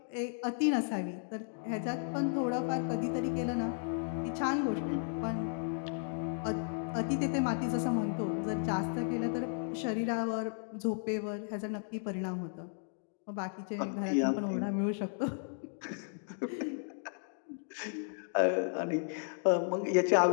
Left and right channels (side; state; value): right; silent; digital silence